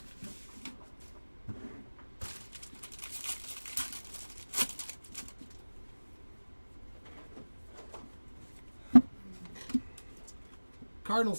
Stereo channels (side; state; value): both; inverted; correlation -1.00